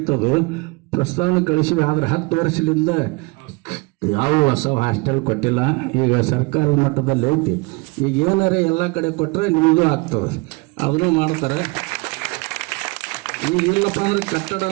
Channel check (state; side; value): quieter; left; 27.1 dB